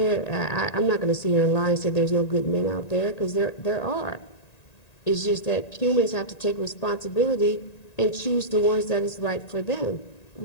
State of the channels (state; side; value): late; right; 1.9 ms